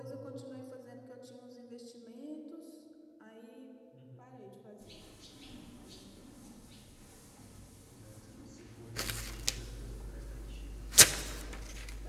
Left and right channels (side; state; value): both; identical; correlation 1.00